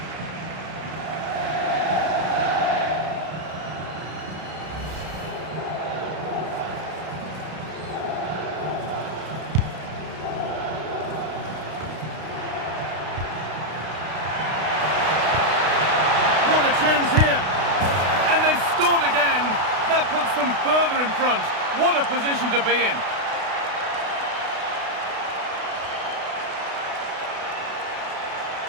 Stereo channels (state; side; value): late; left; 32 ms